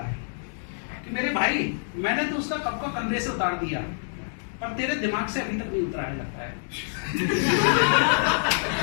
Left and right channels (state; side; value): silent; right; digital silence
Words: कि मेरे भाई मैंने तो उसका कब का कंधे से उतार दिया, पर तेरे दिमाग से अभी तक नहीं उतरा है लगता है।